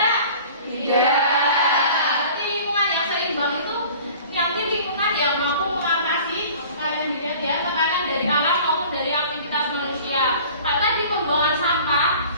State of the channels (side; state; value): both; inverted; correlation -0.45